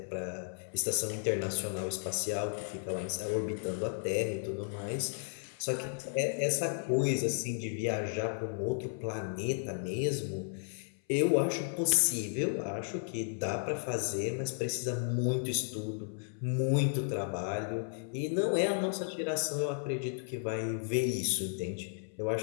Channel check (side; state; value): right; silent; 55 dB below the other